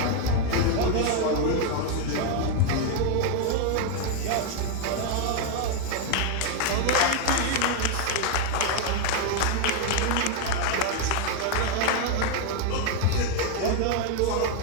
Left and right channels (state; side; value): different; both; correlation 0.01